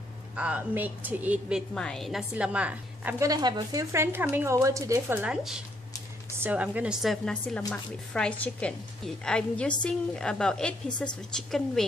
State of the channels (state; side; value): normal; both; correlation 0.71